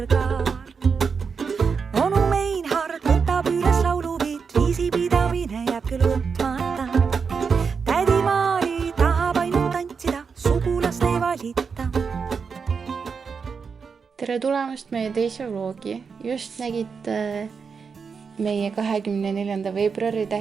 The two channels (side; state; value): left; quieter; 5.7 dB